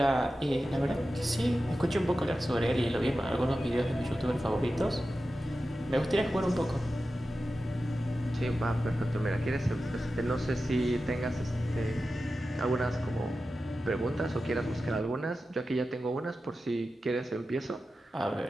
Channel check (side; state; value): both; normal; correlation 0.93